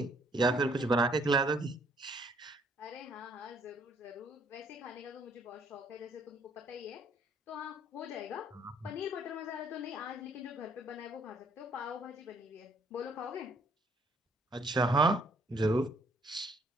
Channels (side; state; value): both; normal; correlation 0.65